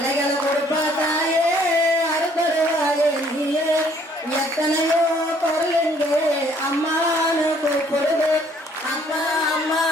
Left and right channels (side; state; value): both; normal; correlation 0.62